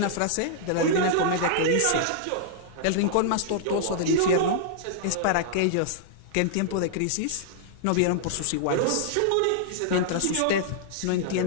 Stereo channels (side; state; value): both; different; correlation -0.01